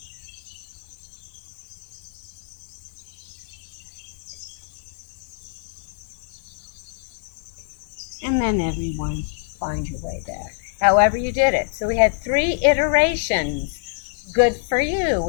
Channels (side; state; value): right; silent; 56 dB below the other